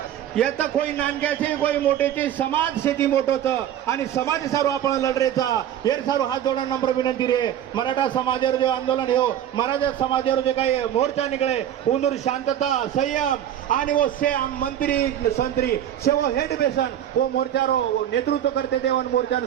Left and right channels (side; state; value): left; quieter; 10.8 dB